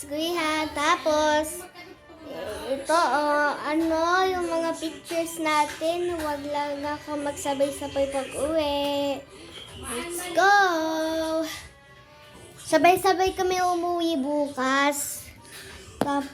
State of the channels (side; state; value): both; identical; correlation 1.00